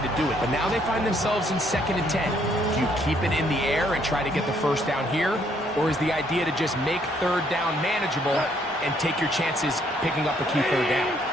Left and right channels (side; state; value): both; normal; correlation 0.68